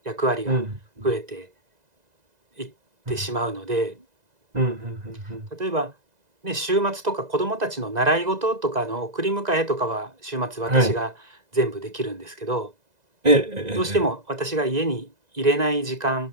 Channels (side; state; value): left; late; 2.0 ms